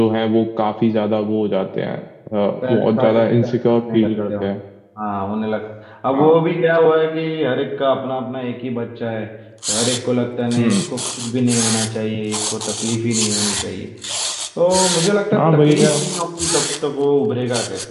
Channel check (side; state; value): both; identical; correlation 1.00